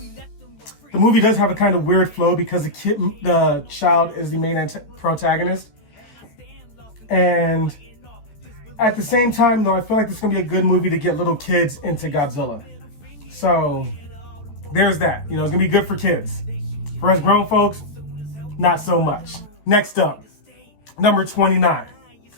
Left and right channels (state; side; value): late; right; 13 ms